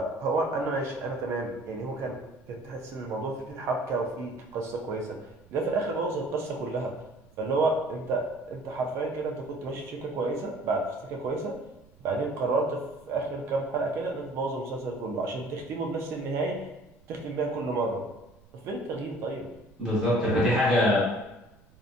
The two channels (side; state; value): right; noise; rumble, 26 dB below the sound